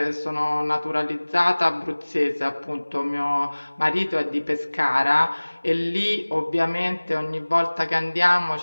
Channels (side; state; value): both; inverted; correlation -1.00